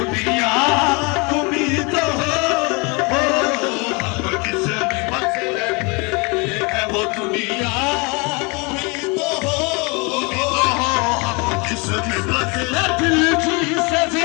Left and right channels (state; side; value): quieter; right; 29.4 dB